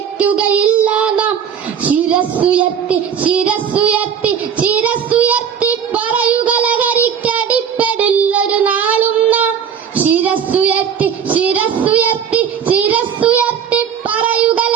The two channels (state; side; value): quieter; left; 7.8 dB